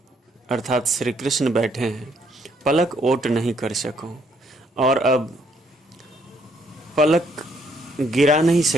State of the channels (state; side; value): normal; both; correlation 0.69